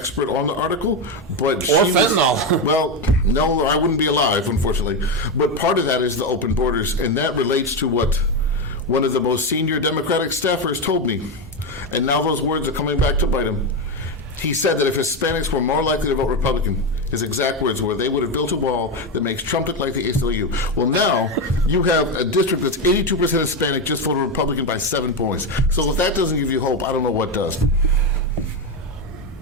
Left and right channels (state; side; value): normal; both; correlation 0.11